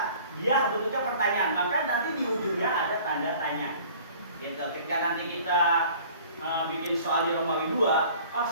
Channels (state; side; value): inverted; both; correlation -0.49